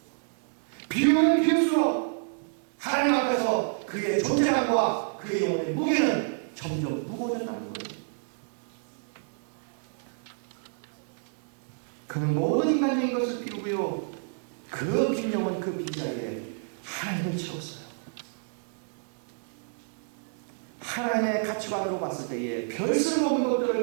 비우면 비울수록 하나님 앞에서 그의 존재감과 그의 영혼의 무게는 점점 무거워진다는 거예요. 그는 모든 인간적인 것을 비우고요. 그 빈 영혼 그 빈자리에 하나님을 채웠어요. 하나님의 가치관으로 봤을 때에 별수를 먹는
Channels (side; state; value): left; silent; digital silence